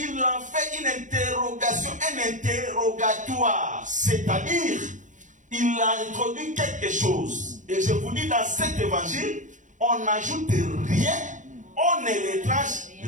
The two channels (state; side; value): late; left; 0.36 ms